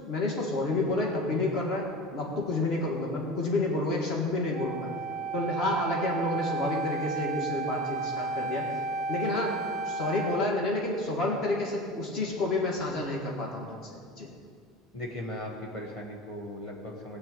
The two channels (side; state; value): both; normal; correlation 0.32